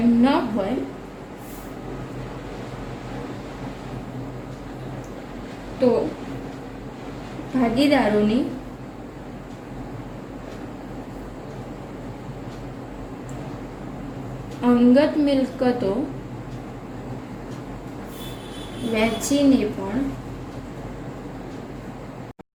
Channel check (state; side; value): identical; both; correlation 1.00